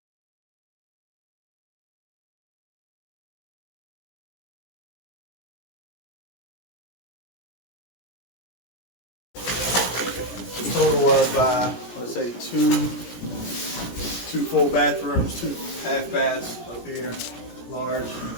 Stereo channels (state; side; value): late; right; 17 ms